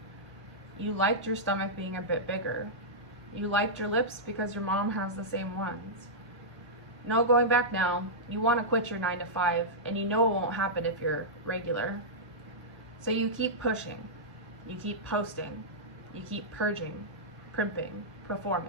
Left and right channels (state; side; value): normal; both; correlation -0.12